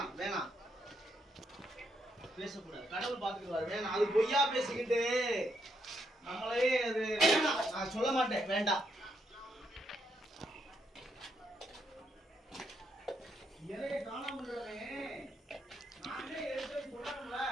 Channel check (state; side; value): normal; both; correlation 0.77